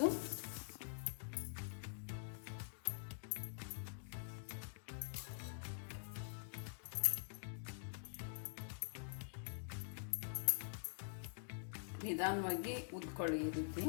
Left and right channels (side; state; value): right; silent; digital silence